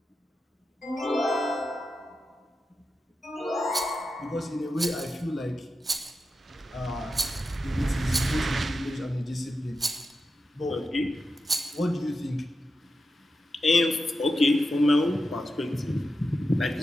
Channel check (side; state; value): both; normal; correlation 0.89